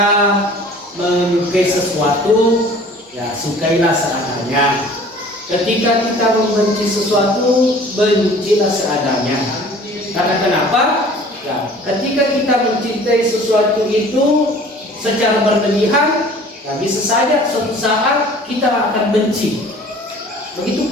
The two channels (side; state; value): both; normal; correlation 0.48